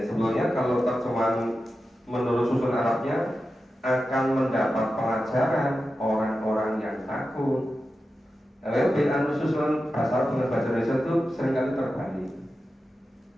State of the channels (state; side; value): normal; both; correlation 0.92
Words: sebelumnya kalau terjemahan menurut susun Arabnya akan mendapat pelajaran orang-orang yang takut. Bacaan susunan bahasa Arab dengan bahasa Indonesia itu seringkali terbalik.